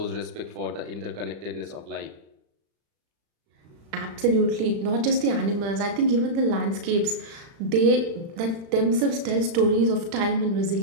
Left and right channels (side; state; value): left; late; 35 ms